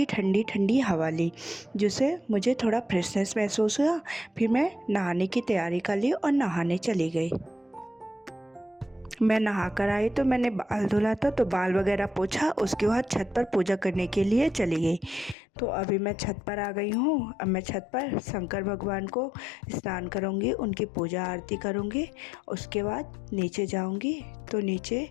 ठंडी ठंडी हवा ली, जिससे मुझे थोड़ा फ्रेशनेस महसूस हुआ। फिर मैं नहाने की तैयारी कर ली और नहाने चली गई। मैं नहा कर आई तो मैंने बाल धुला था, तो बाल वगैरह पोछा। उसके बाद छत पर पूजा करने के लिए चली गई। तो अभी मैं छत पर आ गई हूँ। अब मैं छत पर शंकर भगवान को स्नान करूँगी, उनकी पूजा आरती करूँगी। उसके बाद नीचे जाऊँगी। तो नीचे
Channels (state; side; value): drops out; right; at 15.4 s